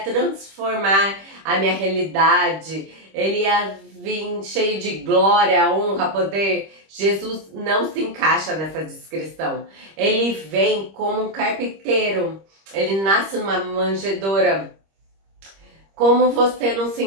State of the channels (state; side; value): late; left; 26 ms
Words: a minha realidade. ele ia vir cheio de glória, honra, poder. Jesus não se encaixa nessa descrição. Ele vem como um carpinteiro, ele nasce numa manjedoura. Como você não se